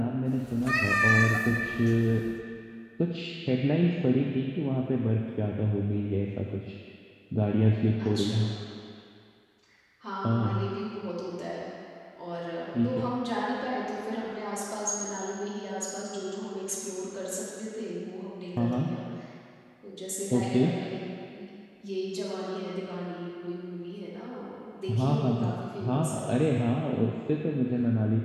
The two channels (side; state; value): both; identical; correlation 1.00